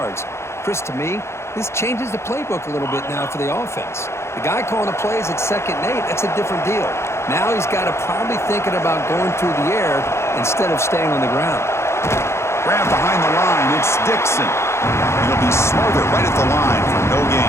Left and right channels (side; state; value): right; late; 0.13 ms